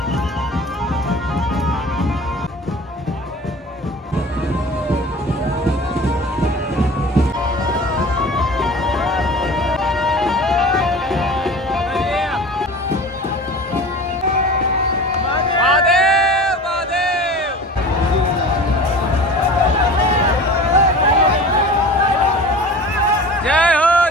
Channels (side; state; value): both; normal; correlation 0.38